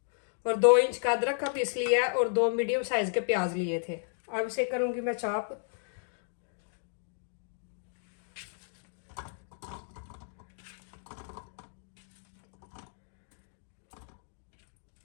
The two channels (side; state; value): right; silent; digital silence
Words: और 2 इंच का अदरक का पीस लिया और 2 मीडियम साइज के प्याज लिए थे। अब इसे करूंगी मैं चॉप।